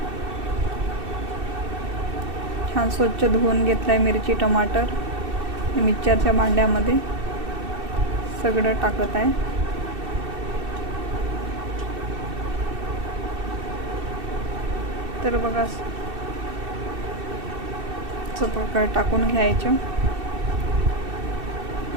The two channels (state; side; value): late; left; 2.7 ms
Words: छान स्वच्छ धुवून घेतलाय मिरची टमाटर। मिक्सरच्या भांड्यामध्ये सगळं टाकत आहे। तर बघा, असं प्रकारे टाकून घ्यायचं।